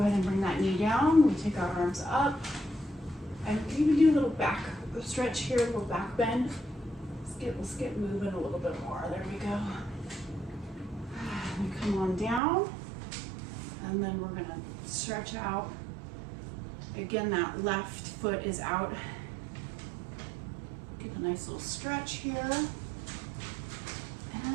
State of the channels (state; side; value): drops out; left; at 12.4 s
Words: and bring that knee down, we take our arms up, and even do a little back stretch here, a little back bend. Let's get moving a little bit more, there we go. And come on down, and then we're gonna stretch out. Again, that left foot is out. Get a nice little stretch here.